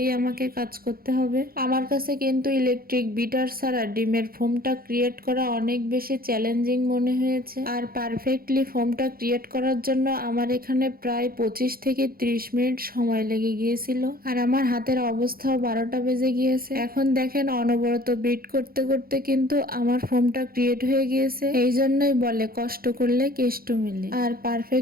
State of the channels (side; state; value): left; late; 0.43 ms